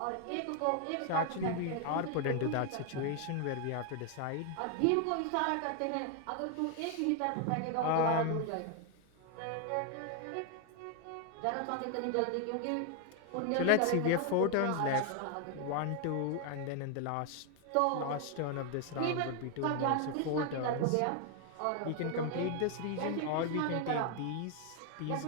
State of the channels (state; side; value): different; both; correlation 0.01